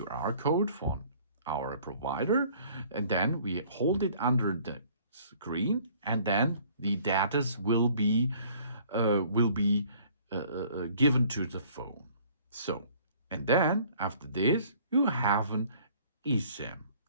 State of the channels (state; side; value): inverted; both; correlation -0.56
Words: code from our provider, and then we hold it under the screen, and then the data will be given to the phone. So, and then after this, you have an eSIM